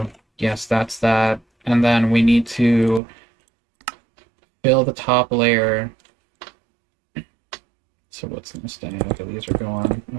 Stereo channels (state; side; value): drops out; left; at 3.0 s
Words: yes, that's that. And then we need to fill the top layer. So what's going to stay? Okay, these are going.